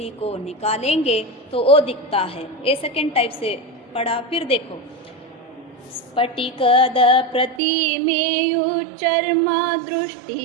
को निकालेंगे तो वो दिखता है। ये सेकेंड टाइप से पढ़ा। फिर देखो, स्फटिकद प्रतिमेयु चर्म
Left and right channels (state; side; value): drops out; left; at 7.6 s